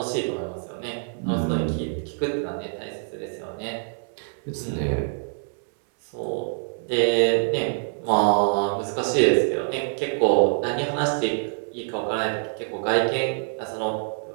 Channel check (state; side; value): silent; left; 61 dB below the other